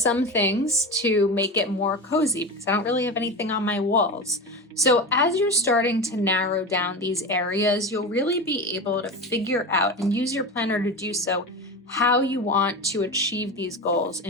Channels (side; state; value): both; normal; correlation 0.24